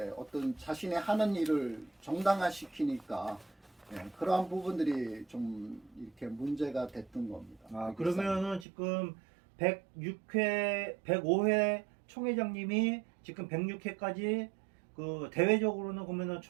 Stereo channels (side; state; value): left; drops out; at 8.7 s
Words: 어떤 자신의 하는 일을 정당화시키니까 그러한 부분들이 좀 이렇게 문제가 됐던 겁니다. 그러면은 지금 105회 총회장님이 지금 106회까지 그 대외적으로는 그러면은